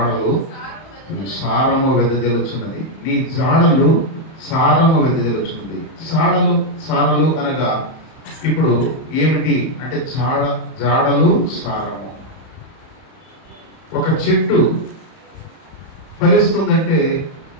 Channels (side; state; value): right; late; 31 ms